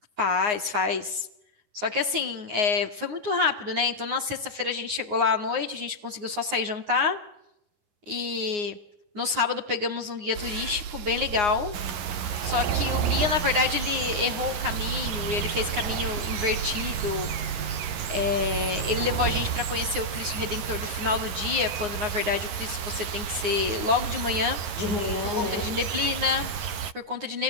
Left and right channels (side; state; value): left; late; 9.6 ms